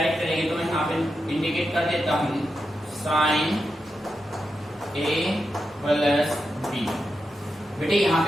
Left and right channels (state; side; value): normal; both; correlation 0.88